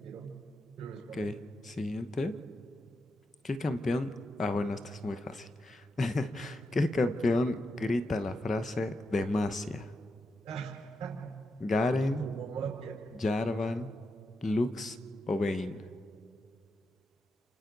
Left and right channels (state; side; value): normal; both; correlation 0.86